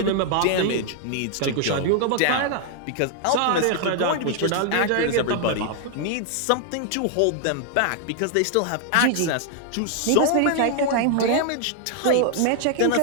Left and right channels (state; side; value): different; both; correlation 0.00